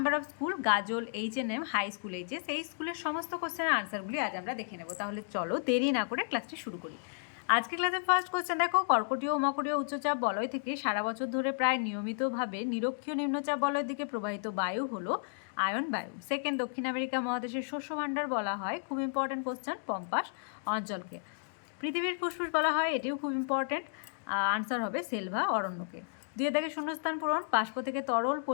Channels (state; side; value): silent; right; digital silence